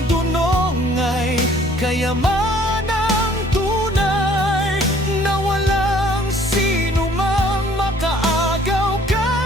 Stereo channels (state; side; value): normal; both; correlation 0.57